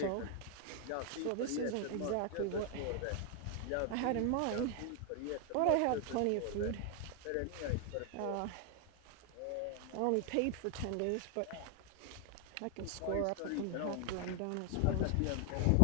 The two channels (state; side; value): different; both; correlation 0.00